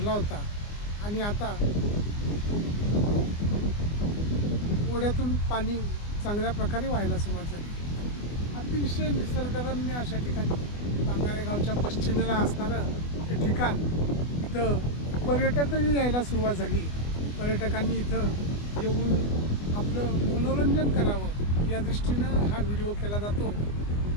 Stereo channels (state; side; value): late; right; 24 ms